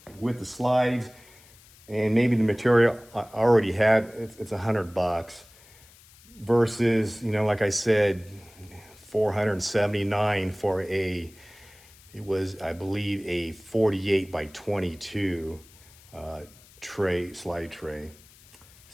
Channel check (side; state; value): left; noise; hiss, 25 dB below the sound